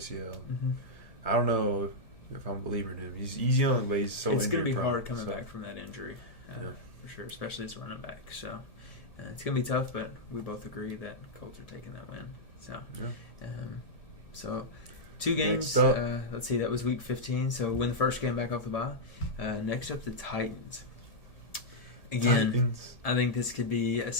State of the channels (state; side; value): late; right; 1.7 ms